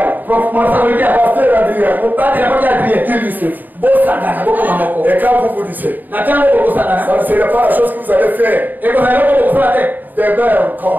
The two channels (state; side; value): late; left; 0.087 ms